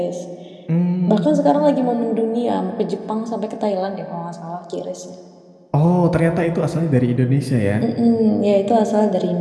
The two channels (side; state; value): both; identical; correlation 1.00